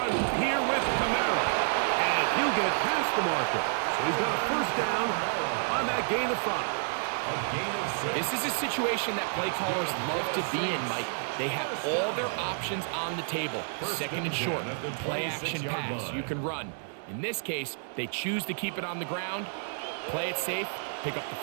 here with Kamara. And he'll get past the marker. So he's got a first down on that gain of 5. This is a situation that play callers love to be in, Mike. They have all their options on the table. 2nd and short, play action pass, you can run. In this case, they choose to keep it on the ground, play it safe, pick up the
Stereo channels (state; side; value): silent; left; 58 dB below the other